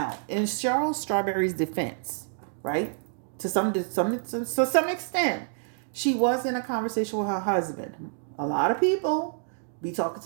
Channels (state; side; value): silent; left; digital silence